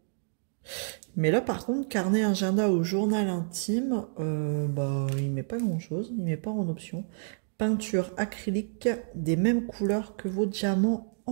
Mais là, par contre, carnet, agenda ou journal intime, bah, il met pas grand-chose. Il met pas en option. Peinture acrylique des mêmes couleurs que vos diamants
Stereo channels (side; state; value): left; silent; digital silence